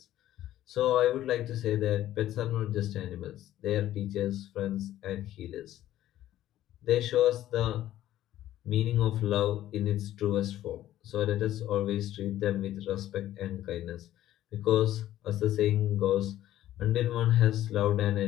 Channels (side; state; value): right; quieter; 13.3 dB